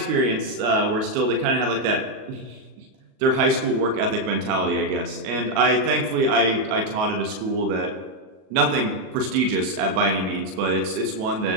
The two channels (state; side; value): late; left; 37 ms